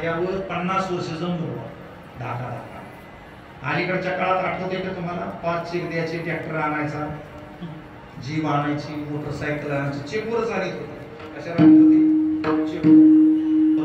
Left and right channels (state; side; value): identical; both; correlation 1.00